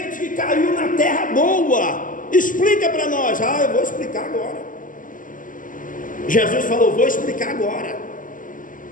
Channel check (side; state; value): right; late; 0.38 ms